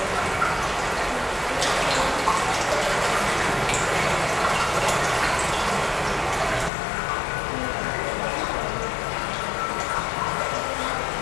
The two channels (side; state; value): right; drops out; at 6.7 s